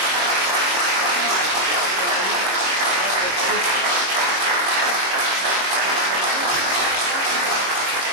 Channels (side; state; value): left; late; 25 ms